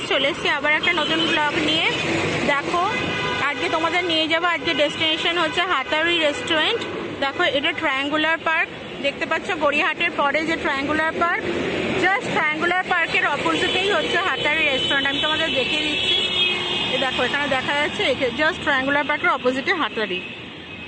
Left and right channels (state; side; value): identical; both; correlation 1.00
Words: चले एसेছি আবার একটা নতুন ব্লগ নিয়ে। দেখো আজকে তোমাদের নিয়ে যাব, আজকে ডেস্টিনেশন হচ্ছে হাতারি রেস্টুরেন্ট। দেখো এটা ট্রায়াঙ্গুলার পার্ক দেখতে পাচ্ছ, গড়িয়াহাটের পরে যে ট্রায়াঙ্গুলার পার্ক, জাস্ট ট্রায়াঙ্গুলার পার্কের অপোজিটেই হচ্ছে হাতারি রেস্টুরেন্ট। আমি তোমাদের দেখিয়ে দিচ্ছি, দেখো এখানে দেখা যাচ্ছে, জাস্ট ট্রায়াঙ্গুলার পার্কের অপোজিটে হাতারি।